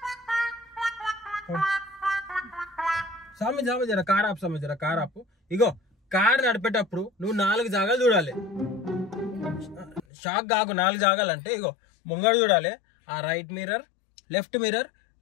స్వామి జామ జర కార్ ఆపు, స్వామి జర కార్ ఆపు. ఇగో కార్ నడిపేటప్పుడు నువ్వు 4 జాగాలు చూడాలి. షాక్ కాకు, 4 జాగాలంటే ఇగో ముంగడు చూడాలి, ఆ right mirror, left mirror,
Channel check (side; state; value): right; drops out; at 10.0 s